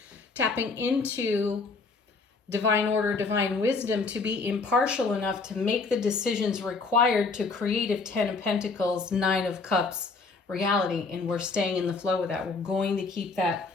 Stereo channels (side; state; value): right; quieter; 4.2 dB